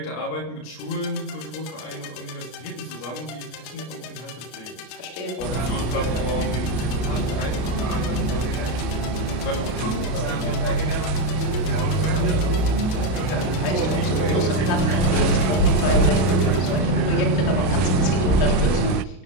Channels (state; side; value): late; right; 32 ms